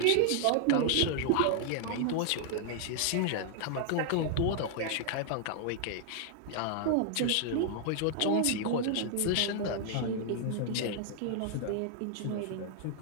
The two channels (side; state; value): both; different; correlation 0.00